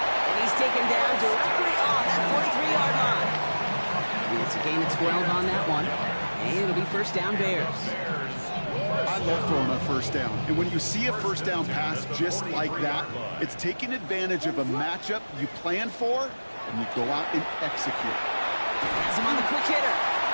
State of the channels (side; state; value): both; inverted; correlation -1.00